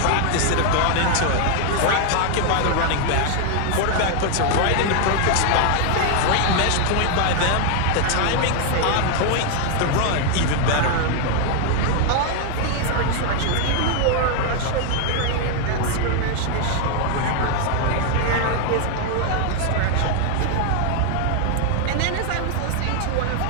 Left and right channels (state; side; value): different; both; correlation 0.00